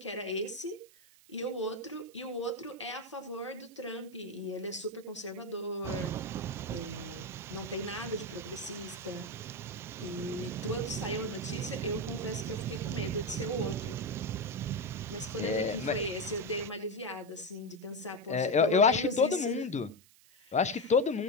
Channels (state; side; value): noise; right; hiss, 26 dB below the sound